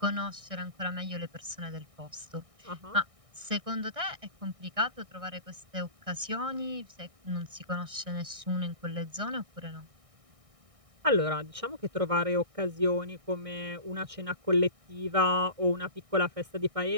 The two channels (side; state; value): left; late; 1.6 ms